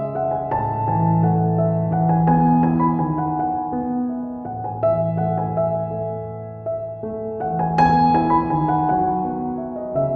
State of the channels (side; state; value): both; identical; correlation 1.00